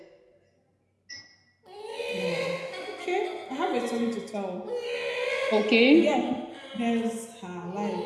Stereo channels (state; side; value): identical; both; correlation 1.00